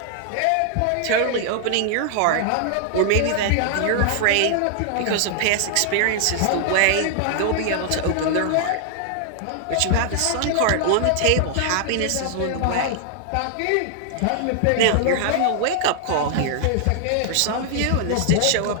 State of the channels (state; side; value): different; both; correlation 0.00